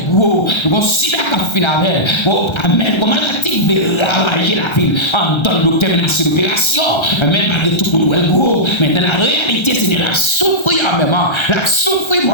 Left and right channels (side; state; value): right; late; 1.3 ms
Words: le gros, comme sida qui a fini avec elle, amen, comme maladie de ravager la ville, en donne docteur menace l'opération, amen, malgré tout pour nous, le gros, mais dans la réalité, Seigneur, la souffrir en même temps, la souffrir